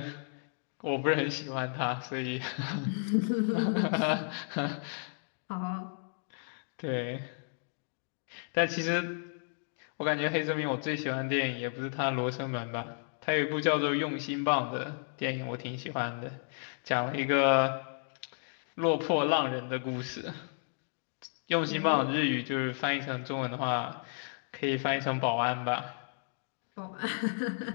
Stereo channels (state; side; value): silent; right; digital silence